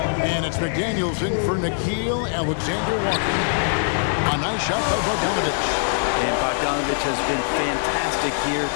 And it's McDaniels in for Nickeil Alexander-Walker. A nice shot by Bogdanovich. And Bogdanovich has been fantastic here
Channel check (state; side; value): silent; right; digital silence